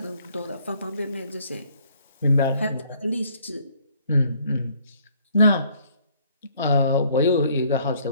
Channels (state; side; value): inverted; both; correlation -0.63